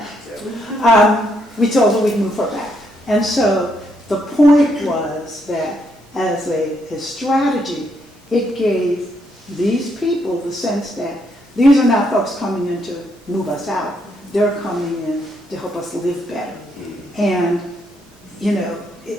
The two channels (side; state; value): both; normal; correlation 0.75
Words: We told her we'd move her back. And so the point was that as a strategy, it gave these people the sense that these are not folks coming in to move us out. They're coming in to help us live better. And,